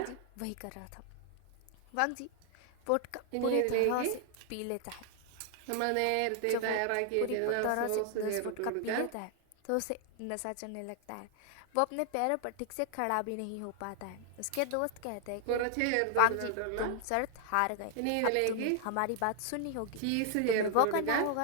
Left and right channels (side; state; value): both; different; correlation 0.00